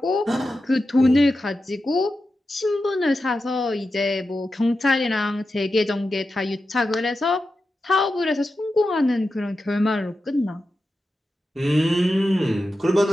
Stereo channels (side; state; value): both; normal; correlation 0.91